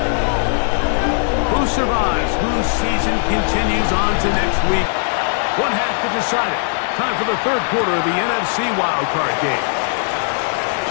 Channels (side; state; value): right; silent; digital silence